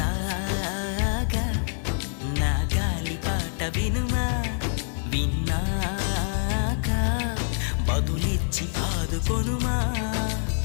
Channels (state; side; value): silent; right; 61 dB below the other